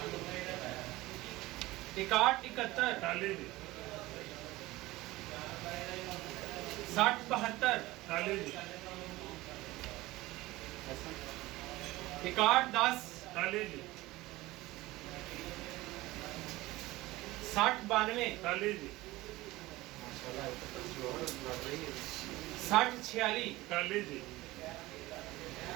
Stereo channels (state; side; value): quieter; left; 18.9 dB